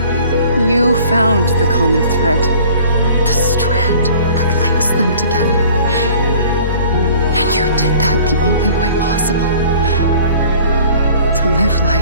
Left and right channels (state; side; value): inverted; both; correlation -0.50